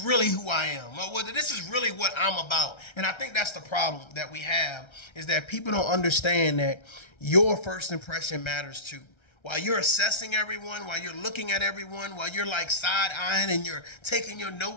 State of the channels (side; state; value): right; late; 1.3 ms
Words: really who I am. Or whether this is really what I'm about. And I think that's the problem that we have, is that people don't understand that your first impression matters too. While you're assessing everyone, while you're looking at everyone, while you're like side-eyeing and you're taking your